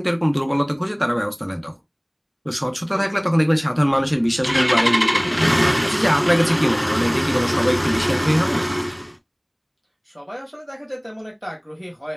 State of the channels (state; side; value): identical; both; correlation 1.00